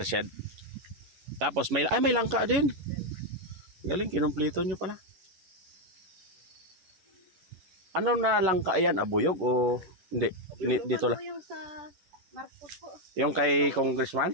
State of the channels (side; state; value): left; late; 11 ms